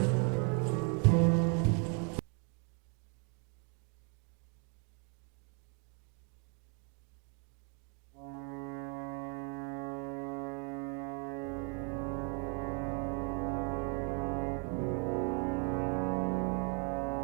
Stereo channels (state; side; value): quieter; left; 38.4 dB